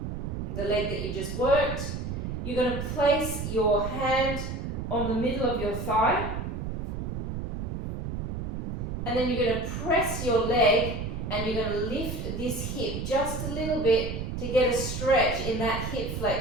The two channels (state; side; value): noise; right; rumble, 4 dB below the sound